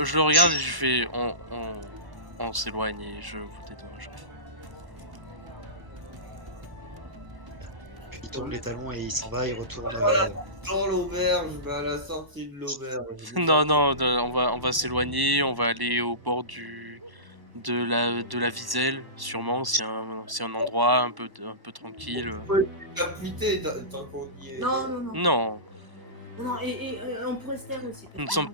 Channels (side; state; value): left; late; 1.1 ms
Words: le regarde et je fais on s'éloigne et je vous dédommagerai. puis il tourne les talons et il s'en va, il retourne. Dans l'auberge, à la sortie de l'auberge. Non, on va s'éloigner, on va aller au bord de la Viselle, sûrement, c'est un endroit un peu tranquille. Capité tant qu'on y est. Non. Non, Non, et on pourrait se taire aussi. nous ne sommes